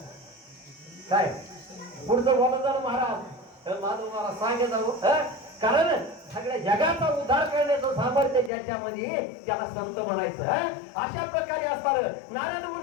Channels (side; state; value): right; drops out; at 8.5 s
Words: काय पुढचं बोलत झालं महाराज. माझं महाराज सांगे जाऊ कारण सगळ्या जगाचा उद्धार करण्याचं सामर्थ्य ज्याच्यामध्ये त्याला संत म्हणायचं. अशा प्रकारे असताना नारद